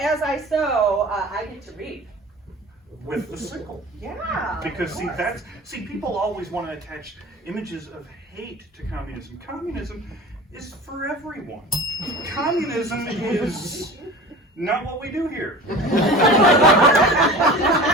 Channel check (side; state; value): both; normal; correlation 0.37